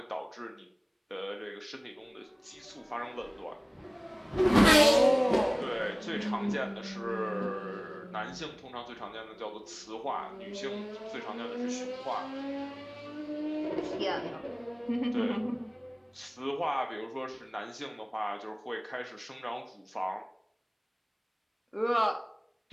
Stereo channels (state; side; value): identical; both; correlation 1.00